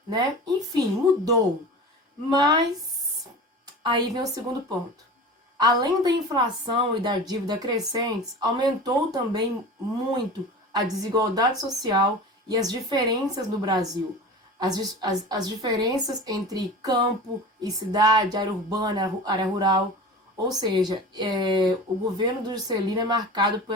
né? Enfim, mudou. Mas aí vem o segundo ponto. Além da inflação e da dívida crescentes, aumentou também muito a desigualdade social e as diferenças no Brasil. As diferenças entre campo e cidade, área urbana, área rural. Ou seja, o governo do Juscelino é marcado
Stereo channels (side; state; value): both; normal; correlation 0.34